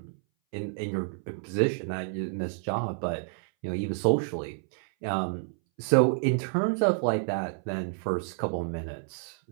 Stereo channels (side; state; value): left; silent; 58 dB below the other